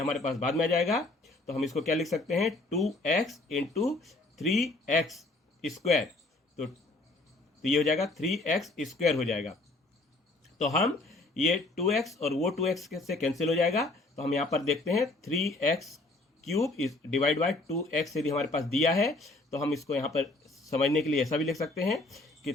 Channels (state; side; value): quieter; right; 3.0 dB